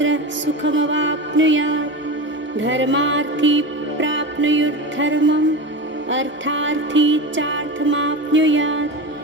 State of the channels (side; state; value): both; normal; correlation 0.25